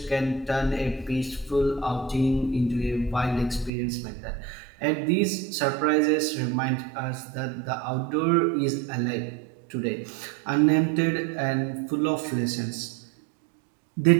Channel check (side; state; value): left; drops out; at 3.7 s